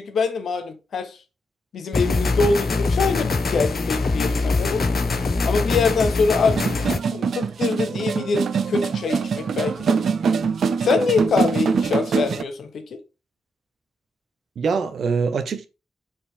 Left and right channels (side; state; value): both; normal; correlation 0.80